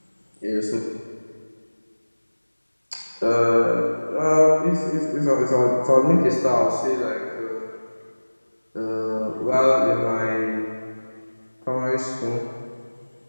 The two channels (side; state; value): both; inverted; correlation -1.00